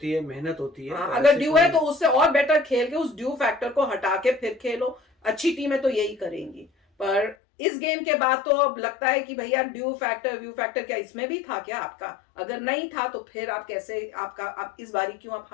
है, मेहनत होती है। अगर ड्यू है तो उससे और बेटर खेल के उस ड्यू फैक्टर को हटा के फिर खेलो। अच्छी टीमें तो यही करेंगी। पर इस गेम के बाद तो अब लगता है कि भैया ड्यू फैक्टर व्यू फैक्टर क्या इसमें भी था क्या आपका? अगर नहीं था तो फिर आप कैसे, आप इस बारी क्यों आप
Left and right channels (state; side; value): drops out; right; at 7.4 s